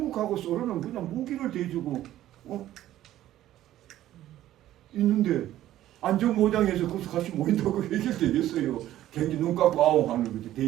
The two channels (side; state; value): left; quieter; 13.5 dB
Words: 소련은 그냥 무기를 대주고 있는데 안전보장해서 거기서 같이 모인다고 해결되겠어요? 괜히 눈 감고 아웅 하는 거죠.